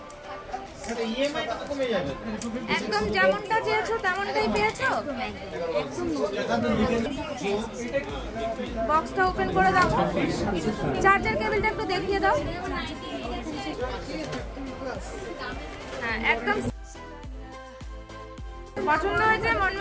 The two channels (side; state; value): both; identical; correlation 1.00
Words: একদম যেমনটা চেয়েছো তেমনটাই পেয়েছো। বক্সটা ওপেন করে দাও, চার্জার কেবলটা একটু দেখিয়ে দাও। হ্যাঁ একদম পছন্দ হয়েছে, মন